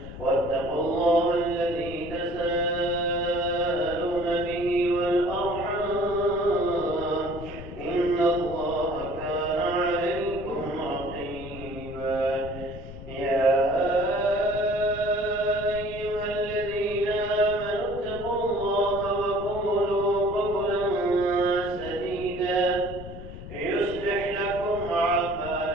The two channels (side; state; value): left; noise; rumble, 12 dB below the sound